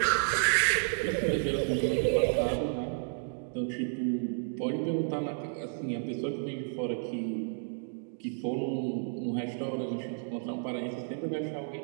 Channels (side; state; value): left; silent; digital silence